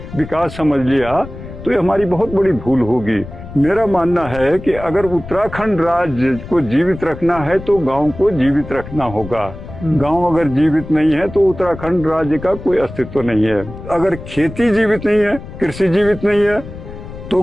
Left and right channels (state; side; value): noise; left; rumble, 13 dB below the sound